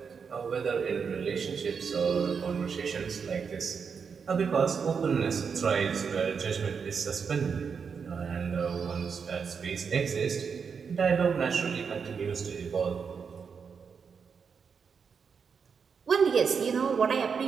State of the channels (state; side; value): quieter; left; 6.1 dB